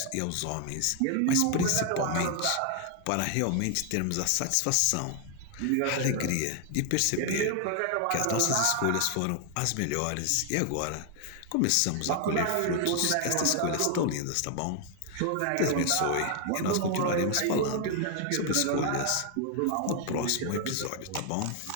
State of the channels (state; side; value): different; both; correlation 0.00